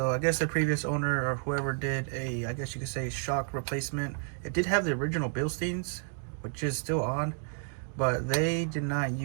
I guess the previous owner or whoever did a, I guess you could say, shock replacement. It did have the original Bilsteins, which is still on, but they did not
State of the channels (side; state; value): left; silent; 57 dB below the other